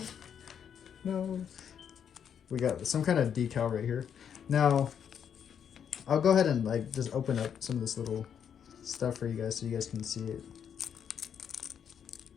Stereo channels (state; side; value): quieter; right; 8.1 dB